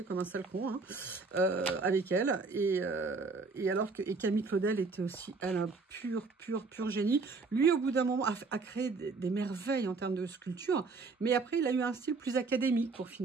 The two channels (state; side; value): quieter; left; 4.2 dB